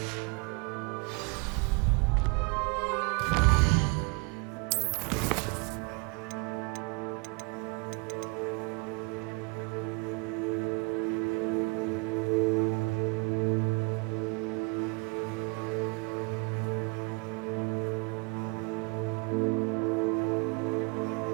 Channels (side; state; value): left; quieter; 30.8 dB